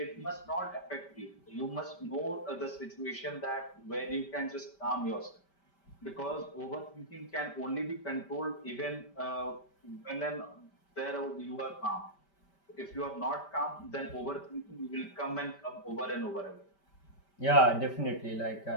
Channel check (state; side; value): late; right; 5.1 ms